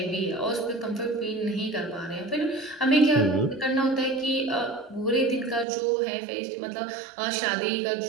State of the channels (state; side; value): drops out; left; at 5.7 s